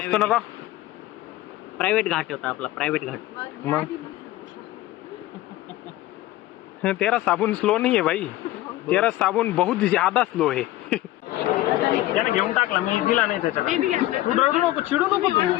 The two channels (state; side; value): quieter; right; 16.1 dB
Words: ना का? प्रायव्हेट घाट होता आपला, प्रायव्हेट घाट. मग तेरा साबुन स्लो नहीं है भाई, तेरा साबुन बहुत ज्यादा स्लो है. त्याने घेऊन टाकला, मी दिला नाही त्याच्याला. तू रडू नको, चिडू नको तू.